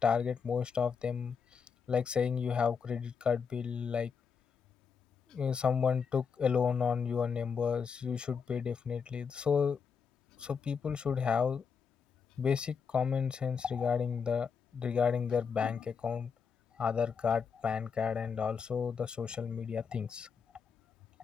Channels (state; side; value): quieter; right; 6.1 dB